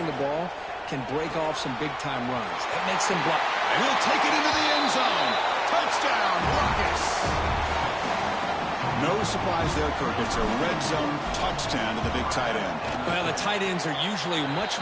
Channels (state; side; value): identical; both; correlation 1.00